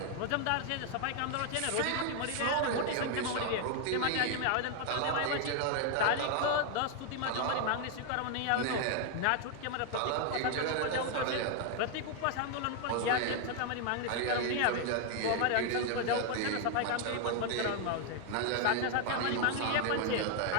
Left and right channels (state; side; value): different; both; correlation 0.00